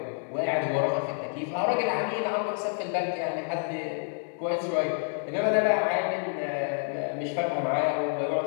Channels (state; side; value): silent; right; 56 dB below the other